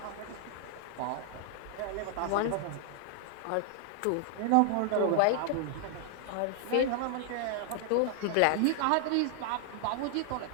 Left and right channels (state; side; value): different; both; correlation 0.00